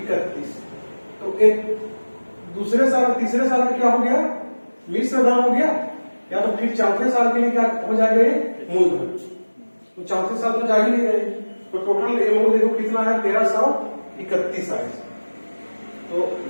तो एक दूसरे साल तीसरे साल का क्या हो गया, मिश्र धन हो गया, या तो फिर चौथे साल के लिए क्या हो जाएगा, ये मूलधन। तो चौथे साल तो जा ही नहीं रहे, तो टोटल अमाउंट देखो कितना है, 1331 आए। तो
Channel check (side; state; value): both; inverted; correlation -1.00